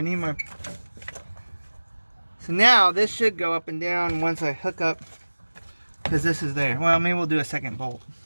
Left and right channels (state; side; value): inverted; both; correlation -1.00